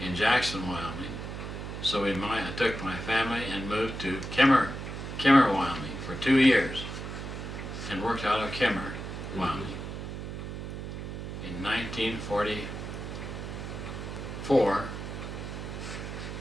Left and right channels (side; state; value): right; noise; hum, 7 dB below the sound